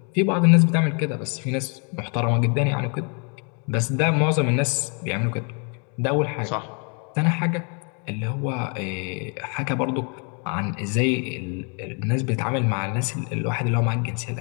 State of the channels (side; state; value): right; quieter; 38.0 dB